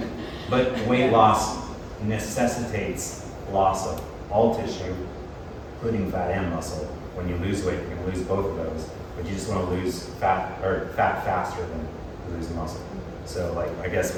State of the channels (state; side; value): identical; both; correlation 1.00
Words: but weight loss necessitates loss of all tissue, including fat and muscle. When you lose weight, you're gonna lose both of those, but you just wanna lose fat faster than lose muscle. So like, I guess